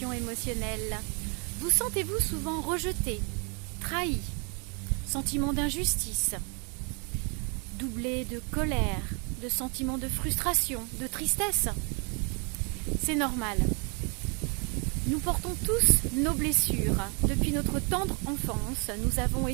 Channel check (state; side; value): quieter; left; 35.2 dB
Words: émotionnelle. Vous sentez-vous souvent rejeté, trahi, sentiment d'injustice, doublé de colère, de sentiments de frustration, de tristesse? C'est normal. Nous portons tous nos blessures. Depuis notre tendre enfance, nous avons